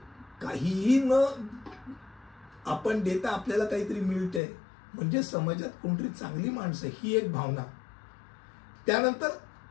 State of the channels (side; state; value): right; drops out; at 4.4 s